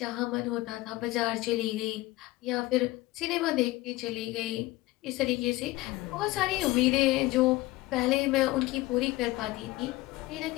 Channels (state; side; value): quieter; right; 19.0 dB